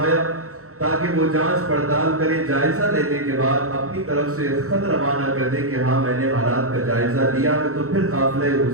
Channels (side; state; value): left; late; 0.64 ms